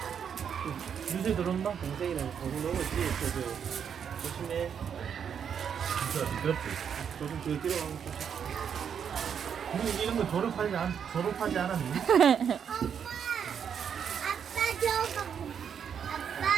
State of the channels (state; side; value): quieter; left; 7.7 dB